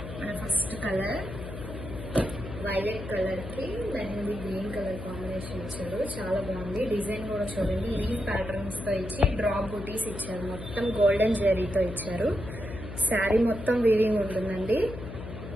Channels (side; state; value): left; noise; hum, 10 dB below the sound